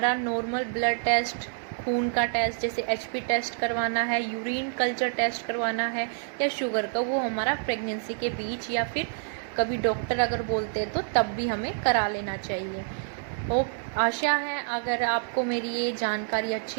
नॉर्मल ब्लड टेस्ट, खून का टेस्ट, जैसे एचपी टेस्ट करवाना है, यूरिन कल्चर टेस्ट करवाना है या शुगर का, वो हमारा प्रेगनेंसी के बीच या फिर कभी डॉक्टर अगर बोलते हैं तो तब भी हमें करा लेना चाहिए। आशा है अगर आपको मेरी ये जानकारी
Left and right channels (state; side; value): silent; left; 60 dB below the other